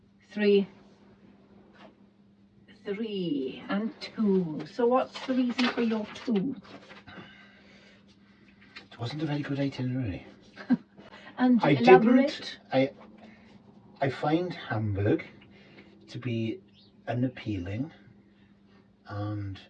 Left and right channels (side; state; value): both; identical; correlation 1.00